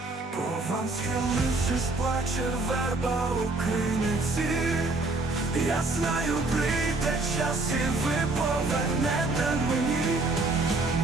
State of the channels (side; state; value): left; quieter; 3.2 dB